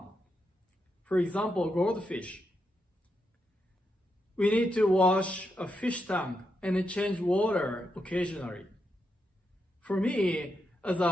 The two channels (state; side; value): normal; both; correlation 0.83